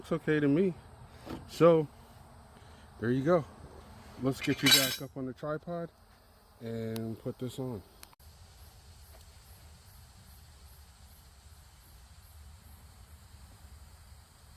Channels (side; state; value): both; identical; correlation 1.00